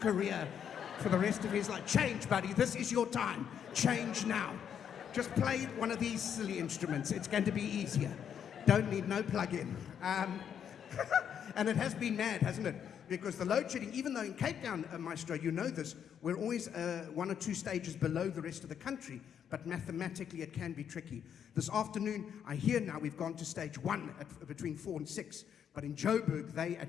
for the rest of his life. Change, buddy. This is your time. Change now. Just play one of these silly instruments. It's going to be easier. Don't need no plug-in. And it has been mad, hasn't it? Because the load shedding, even though in Cape Town, Maestro, you know this, we're always 1 or 2 stages below the rest of the country, but mathematically it can be tricky. This afternoon, I hear now we've gone to stage 1 between 4 and 6, but in Joburg, they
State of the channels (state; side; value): quieter; right; 8.4 dB